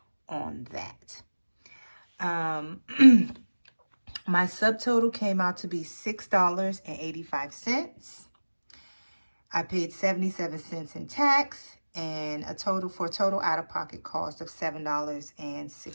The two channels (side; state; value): both; inverted; correlation -1.00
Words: on that. My subtotal came out to be $6.85. I paid 77 cents in tax, and a total out-of-pocket cost of